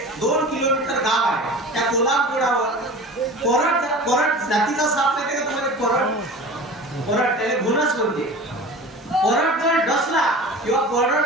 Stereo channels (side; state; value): both; normal; correlation 0.36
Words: 2 किलोमीटर गाव आहे, त्या कोल्हापुरावर कोरड जातीचा साप नाही का तुम्हाला? कोरड त्याला गुणच म्हणते. कोरड जर डसला किंवा